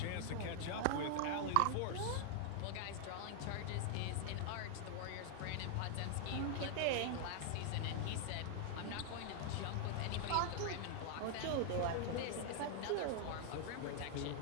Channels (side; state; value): both; different; correlation 0.00